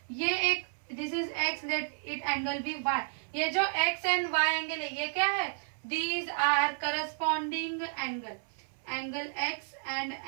ये एक, this is X, let it angle be Y, ये जो एक्स एंड वाई एंगल है ये क्या है, these are corresponding angle, angle x and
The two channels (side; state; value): left; silent; 56 dB below the other